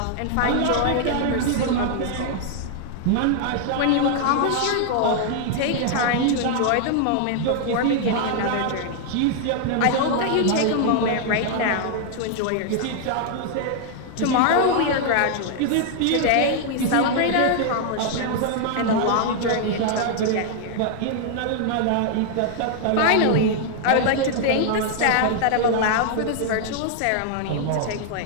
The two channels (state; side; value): different; both; correlation 0.00